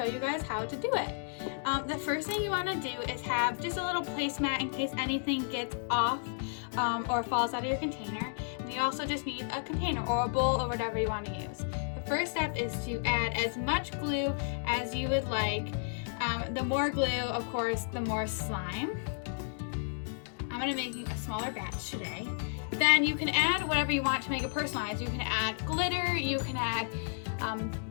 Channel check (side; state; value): right; silent; digital silence